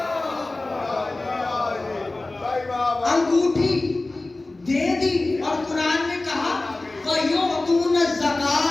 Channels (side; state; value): right; quieter; 3.0 dB